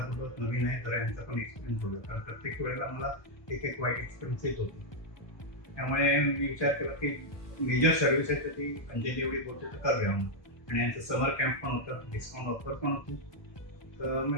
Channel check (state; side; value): late; right; 1.2 ms